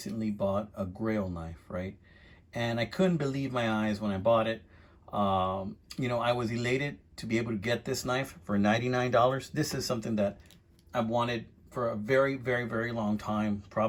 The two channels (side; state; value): both; identical; correlation 1.00